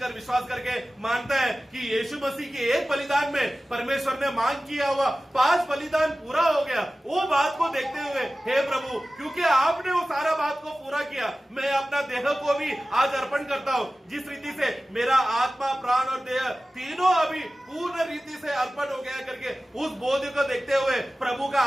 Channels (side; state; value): both; normal; correlation 0.96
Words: विश्वास करके मानता है कि यीशु मसीह के एक बलिदान में परमेश्वर ने मांग किया हुआ 5 बलिदान पूरा हो गया, वो बात को देखते हुए हे प्रभु, क्योंकि आपने वो सारा बात को पूरा किया, मैं अपना देह को भी आज अर्पण करता हूँ. जिस रीति से मेरा आत्मा प्राण और देह तीनों अभी पूर्ण रीति से अर्पण हो गया करके उस बोध को देखते हुए प्रभु